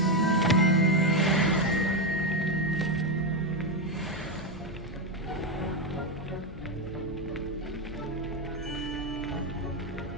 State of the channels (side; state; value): both; normal; correlation 0.07